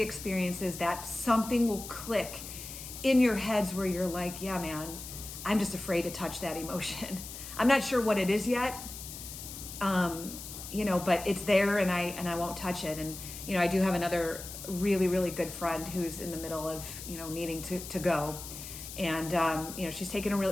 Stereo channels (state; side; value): noise; left; hiss, 11 dB below the sound